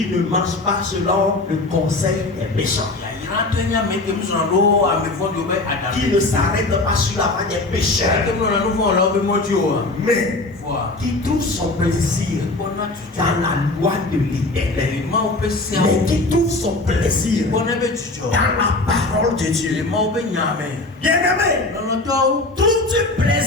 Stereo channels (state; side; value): quieter; right; 3.0 dB